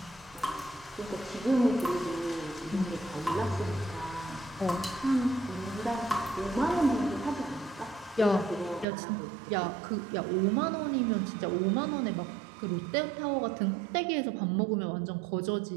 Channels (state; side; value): drops out; left; at 8.8 s